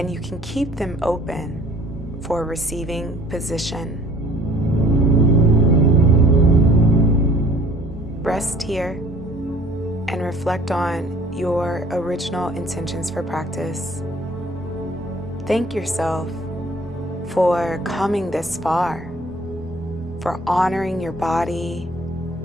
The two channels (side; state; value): both; normal; correlation 0.54